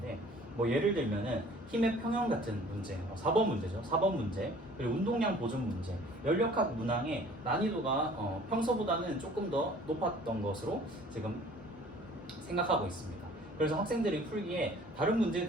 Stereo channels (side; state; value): both; normal; correlation 0.51